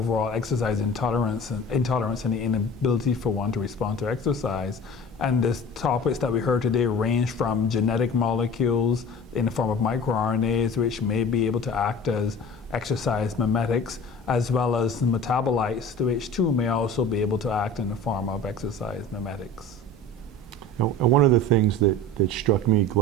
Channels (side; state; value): both; normal; correlation 0.39